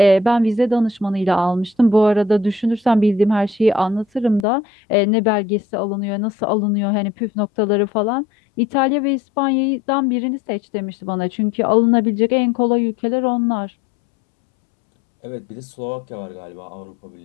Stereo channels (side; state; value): right; drops out; at 4.5 s